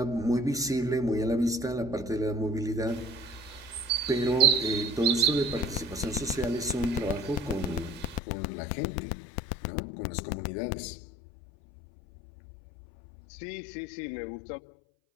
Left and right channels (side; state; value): right; drops out; at 8.2 s